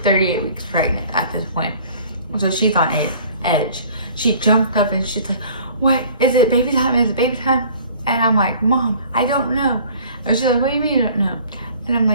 38 weeks pregnant at this point, so she's on edge. She jumped up, and she's like, what, is it baby time, is it baby time? And I'm like, Mom, I don't know. And she's like, what do you mean you don't know? And I'm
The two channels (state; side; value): inverted; both; correlation -0.50